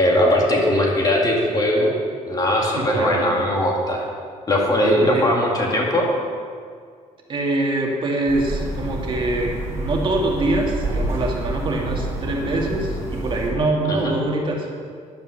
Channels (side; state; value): both; normal; correlation 0.56